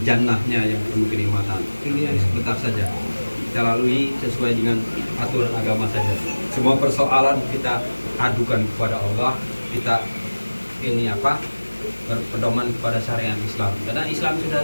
jannahnya yang penuh kenikmatan. Ini sebentar saja kita lalui sesuai dengan aturan agama saja. Semua persoalan kita adukan kepada Allah, kita berpedoman kepada syariat Islam. Karena Islam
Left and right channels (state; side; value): inverted; both; correlation -1.00